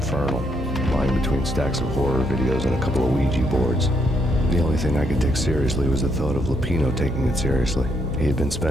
lying between stacks of horror videos and a couple of Ouija boards. The only thing I could take seriously was the thought of Lupino taking it seriously. He had been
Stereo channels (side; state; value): both; normal; correlation 0.75